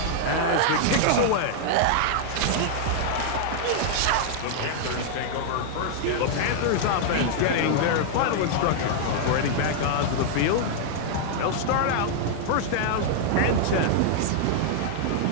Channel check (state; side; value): different; both; correlation -0.01